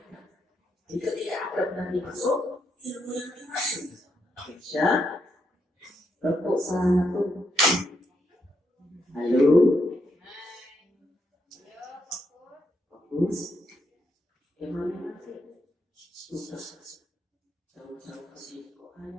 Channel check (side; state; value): both; normal; correlation 0.79